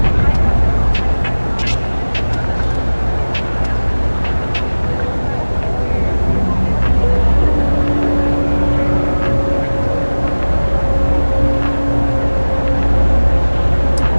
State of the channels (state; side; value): inverted; both; correlation -1.00